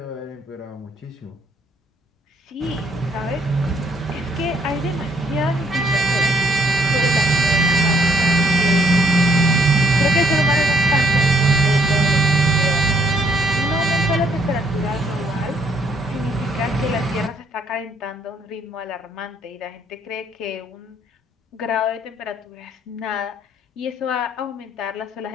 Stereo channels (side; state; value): both; normal; correlation 0.66